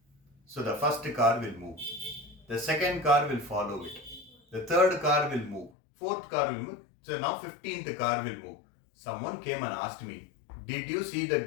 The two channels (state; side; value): drops out; right; at 5.7 s